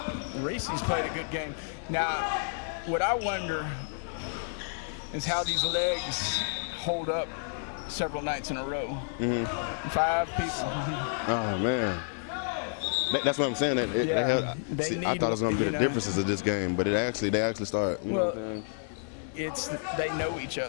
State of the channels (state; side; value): silent; right; digital silence